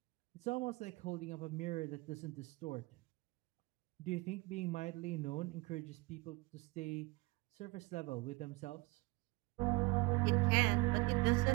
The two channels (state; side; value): quieter; left; 24.5 dB